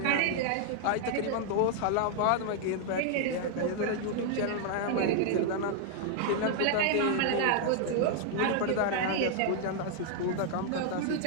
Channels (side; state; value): both; different; correlation 0.00